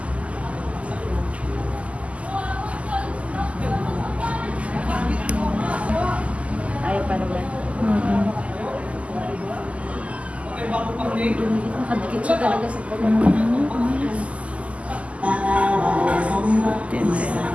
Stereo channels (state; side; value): late; left; 0.064 ms